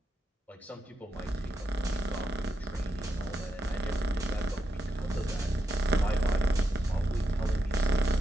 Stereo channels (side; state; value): both; normal; correlation 0.84